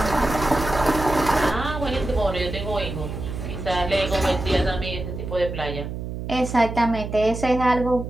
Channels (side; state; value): right; noise; hum, 7 dB below the sound